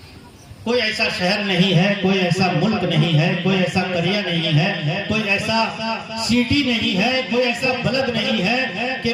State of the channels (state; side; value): identical; both; correlation 1.00